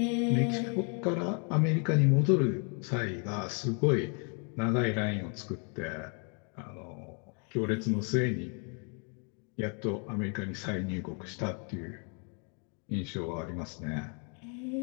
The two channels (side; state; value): right; quieter; 38.3 dB